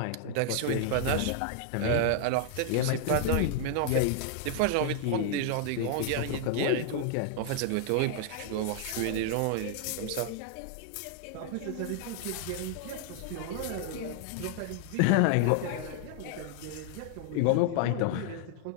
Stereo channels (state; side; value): different; both; correlation 0.00